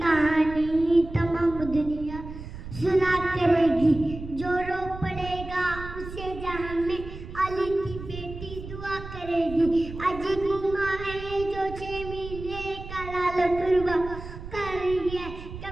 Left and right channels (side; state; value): right; noise; rumble, 11 dB below the sound